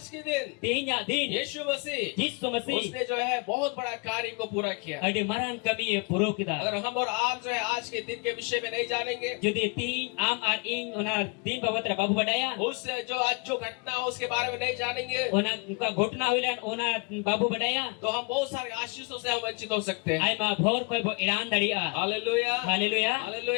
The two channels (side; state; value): right; quieter; 31.7 dB